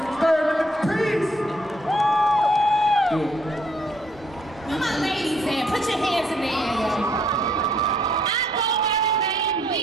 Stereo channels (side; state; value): both; normal; correlation 0.67